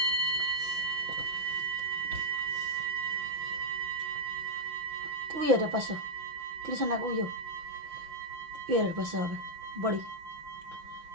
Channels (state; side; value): late; left; 6.1 ms